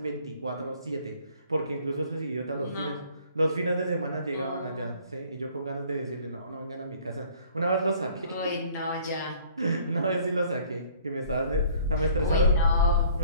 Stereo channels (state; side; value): inverted; both; correlation -0.55